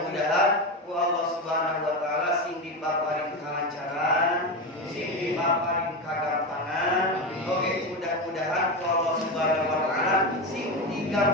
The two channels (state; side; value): normal; both; correlation 0.17